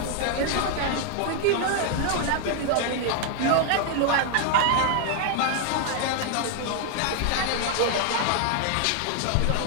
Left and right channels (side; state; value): both; different; correlation 0.00